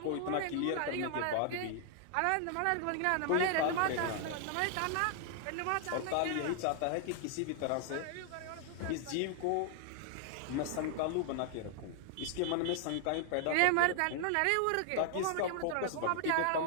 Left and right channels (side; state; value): both; different; correlation 0.00